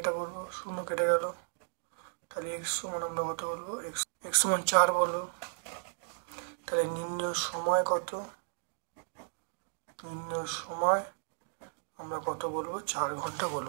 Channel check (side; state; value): left; silent; digital silence